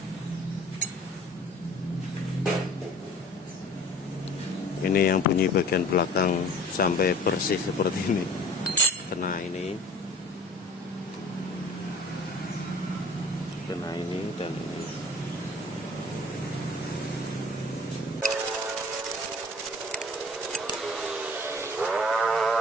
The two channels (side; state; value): both; normal; correlation 0.47